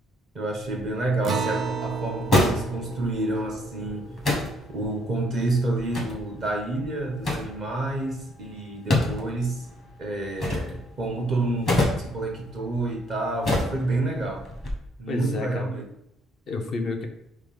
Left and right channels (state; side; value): normal; both; correlation 0.67